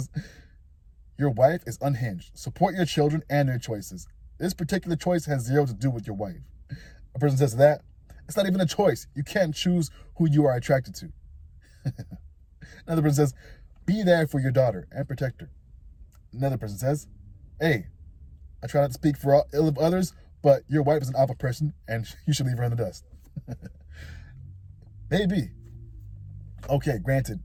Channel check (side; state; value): both; identical; correlation 1.00